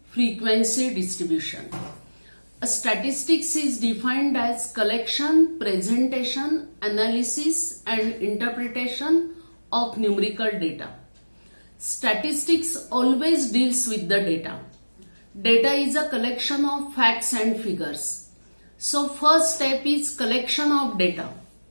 frequency distribution. A statistics is defined as collection, presentation, analysis and interpretation of numerical data. Statistics always deals with the data. Data is a collection of facts and figures. So first step is collection of data.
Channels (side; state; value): both; inverted; correlation -1.00